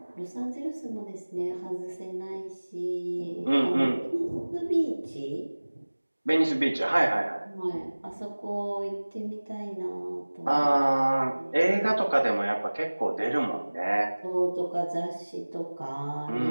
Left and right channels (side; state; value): both; inverted; correlation -1.00